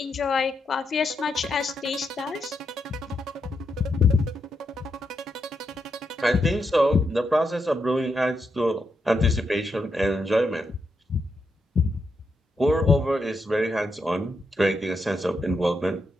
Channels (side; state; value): both; normal; correlation 0.82